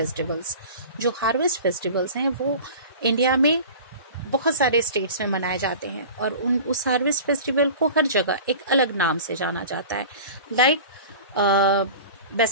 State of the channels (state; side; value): inverted; both; correlation -0.38